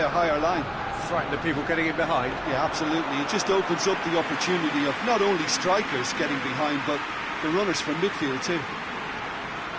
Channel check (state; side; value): identical; both; correlation 1.00